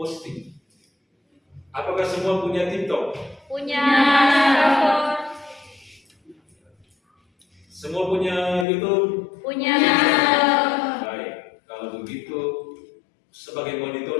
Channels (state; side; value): drops out; right; at 8.7 s